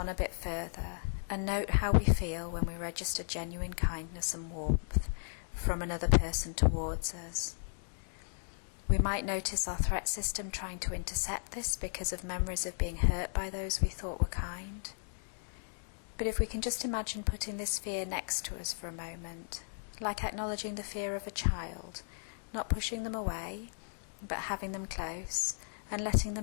a bit further and note how we feel when we register genuine kindness and warmth from another person towards us. We might notice our threat system trying to intercept this because of memories of being hurt by those we thought were kind. But if we can just imagine putting this fear next to us for a moment, like acknowledging the fear of a child, not pushing them away, but having them close, and letting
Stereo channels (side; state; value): right; silent; digital silence